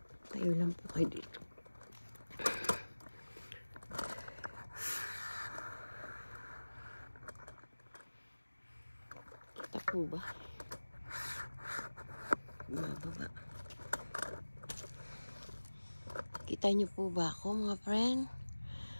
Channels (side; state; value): both; inverted; correlation -1.00